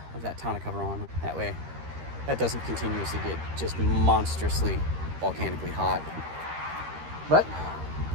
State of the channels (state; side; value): late; left; 13 ms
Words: of that tonneau cover on. That way, that doesn't continuously get just monstrously volcanically hot. But